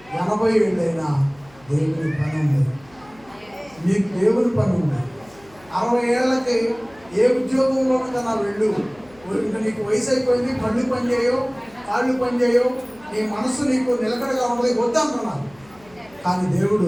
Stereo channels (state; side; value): noise; left; hum, 27 dB below the sound